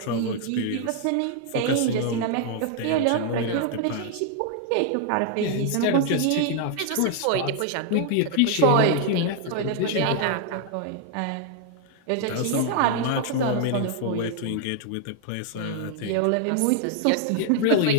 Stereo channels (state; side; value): different; both; correlation 0.00